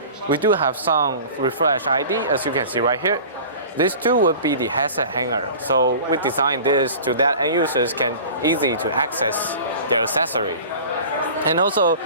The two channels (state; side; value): inverted; both; correlation -0.40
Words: we do have some refresh ID as you can see right here. These two would be the headset hanger. So we designed this to that end users can easy to access their accessory. And also,